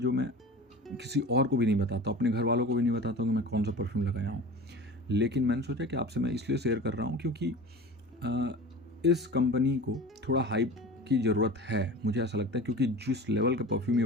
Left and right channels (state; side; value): normal; both; correlation 0.36